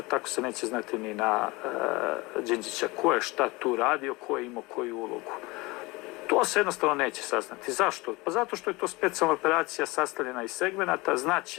tako se neće znati ni na Đinđića, ko je šta tu radio, ko je imao koju ulogu. To se jednostavno neće saznati. Zašto? Pa zato što je to specijalna operacija sastavljena iz segmenata,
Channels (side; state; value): right; quieter; 23.5 dB